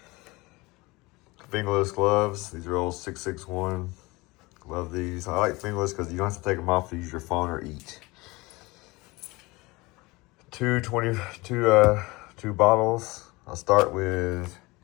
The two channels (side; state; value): right; quieter; 23.0 dB